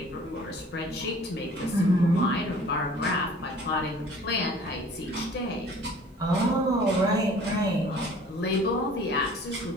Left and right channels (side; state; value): both; normal; correlation 0.50